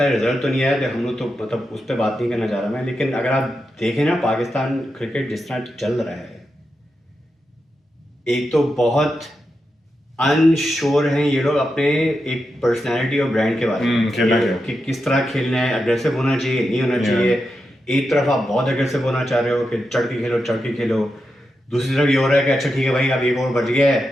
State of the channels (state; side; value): normal; both; correlation 0.87